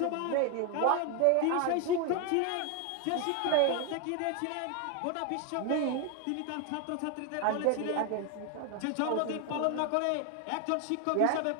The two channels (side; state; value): both; different; correlation 0.01